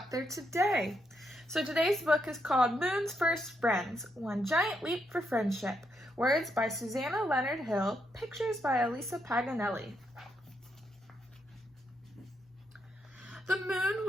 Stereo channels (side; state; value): both; normal; correlation 0.79